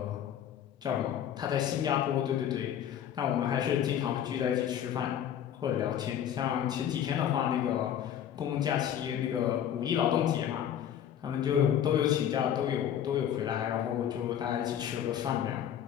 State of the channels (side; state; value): right; quieter; 9.9 dB